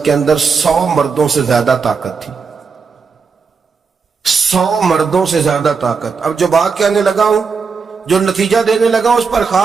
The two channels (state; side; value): quieter; left; 5.3 dB